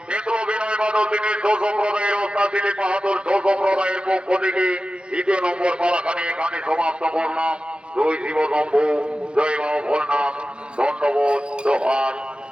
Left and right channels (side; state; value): left; late; 0.055 ms